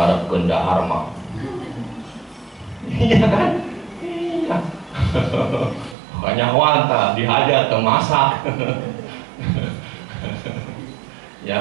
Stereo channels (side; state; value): left; drops out; at 6.0 s